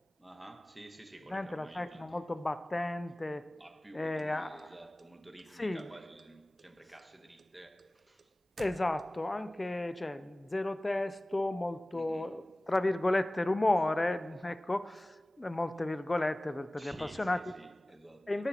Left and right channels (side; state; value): both; normal; correlation 0.98